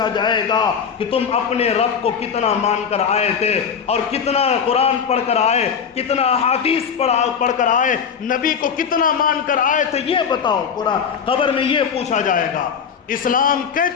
جائے گا کہ تم اپنے رب کو کتنا مان کر آئے تھے اور کتنا قرآن پڑھ کر آئے، کتنا حدیث پڑھ کر آئے، نبی کو کتنا مان کر آئے تھے، یہ بتاؤ۔ قرآن قبر میں یہ پوچھا جائے گا۔ اسلام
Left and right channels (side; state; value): right; quieter; 6.9 dB